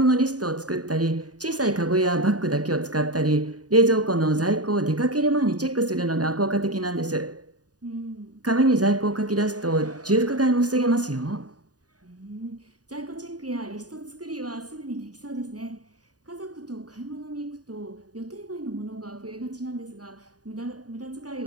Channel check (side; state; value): left; late; 0.68 ms